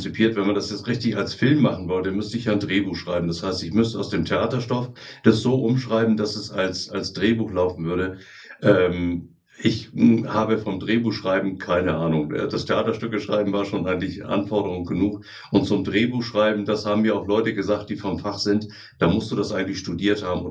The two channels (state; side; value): identical; both; correlation 1.00